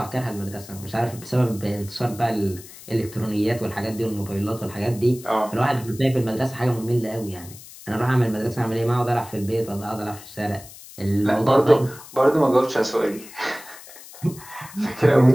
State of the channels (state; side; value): noise; left; hiss, 18 dB below the sound